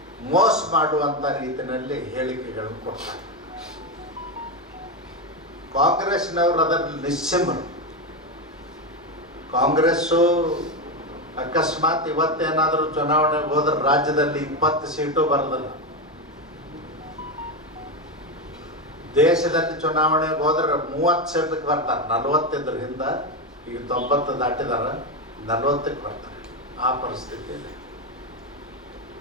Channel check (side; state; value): both; normal; correlation 0.12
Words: ಮೋಸ ಮಾಡುವಂಥ ರೀತಿಯಲ್ಲಿ ಹೇಳಿಕೆಗಳನ್ನು ಕೊಡ್ತಾರೆ. ಕಾಂಗ್ರೆಸ್ನವರು ಅದರಲ್ಲಿ ನಿಸ್ಸೀಮರು. ಕಾಂಗ್ರೆಸ್ಸು ಅಕಸ್ಮಾತ್ ಇವತ್ತೇನಾದರೂ ಚುನಾವಣೆಗೆ ಹೋದ್ರೆ ರಾಜ್ಯದಲ್ಲಿ 20 ಸೀಟು ಬರೋದಿಲ್ಲ. ದೇಶದಲ್ಲಿ ಚುನಾವಣೆಗೆ ಹೋದ್ರೆ 30 ಸೀಟಕ್ಕೆ ಬರ್ತಾರೆ. 40 ಇದ್ರ ಹಿಂದ, ಈಗ 90 ದಾಟಿದಾರ, 40ಕ್ಕೆ ಬರ್ತಾರೆ. ಆ ಪರಿಸ್ಥಿತಿ ಇದೆ.